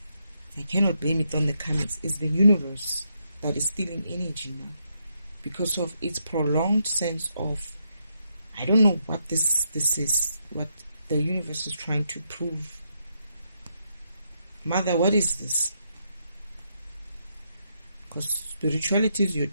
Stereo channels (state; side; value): inverted; both; correlation -0.79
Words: I cannot blame it on the karmics. It's the universe that is stealing energy now because of its prolonged sense of, I don't know what this is, what the universe is trying to prove. Mother, what is this? Because spirituality is your